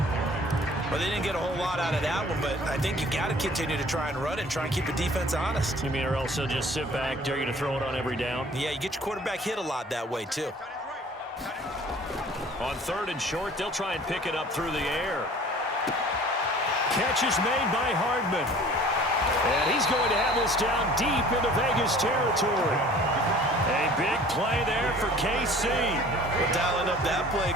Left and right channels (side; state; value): both; normal; correlation 0.49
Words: Well, they didn't get a whole lot out of that one, but I think you got to continue to try and run and try and keep the defense honest. You mean or else they'll just sit back, dare you to throw it on every down? Yeah, you get your quarterback hit a lot that way, too. On 3rd and short, they'll try and pick it up through the air. Catch is made by Hardman. And he's going to have this down deep into Vegas territory. A big play there for KC. Well, dialing up that play